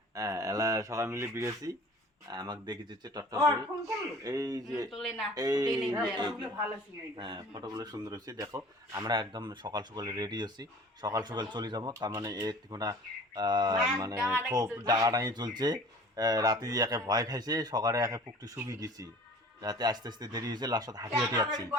হ্যাঁ, এলা সবাই মিলে বিরেছি, আমাকে দেখে দিচ্ছে টট্ট করে। এই যে হ্যাঁ, ফটোগুলো সুন্দর হয়েছে। দেখো আমরা একদম সকাল সকাল রেডি হচ্ছি, সকাল সকাল চলে যাবো। তার মানে এর কোনো মানে খুব ডাঙাডাঙি চলছে। রাতে একে ভয় খাইছে, সকালে একে পুকটি শুকিয়ে গেছি, রাতে আস্তে আস্তে দেরি হয়েছে, লাস্টত হাঁটি হাঁটি যাচ্ছি।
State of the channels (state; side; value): normal; both; correlation 0.45